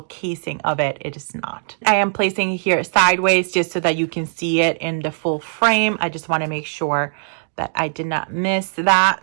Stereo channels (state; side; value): silent; left; digital silence